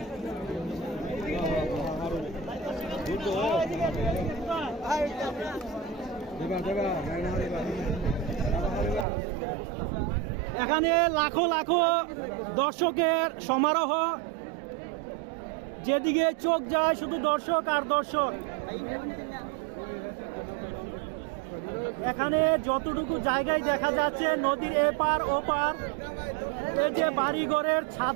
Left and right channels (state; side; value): drops out; left; at 9.1 s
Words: এখানে লাখো লাখো দর্শকের সমারোহ, যেদিকে চোখ যায় শুধু দর্শক আর দর্শক। এখানে যতটুকু জায়গায় দেখা যাচ্ছে নদীর এপার ওপার, এই যে বাড়িঘরের